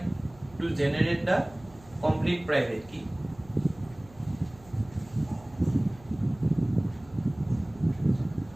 to generate the complete private key.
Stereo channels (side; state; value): right; noise; hum, 23 dB below the sound